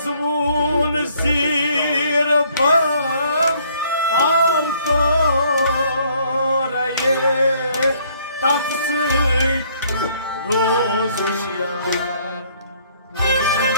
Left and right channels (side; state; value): both; inverted; correlation -0.63